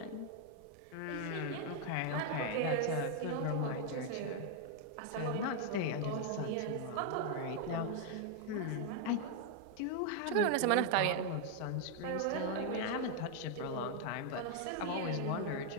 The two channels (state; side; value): different; both; correlation 0.00